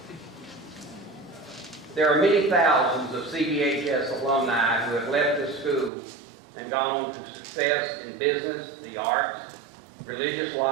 There are many thousands of CBHS alumni who have left this school and gone on to success in business, the arts, religious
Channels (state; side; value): drops out; left; at 5.9 s